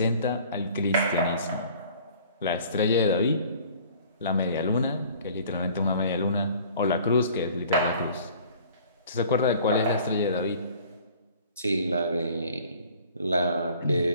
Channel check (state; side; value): inverted; both; correlation -0.51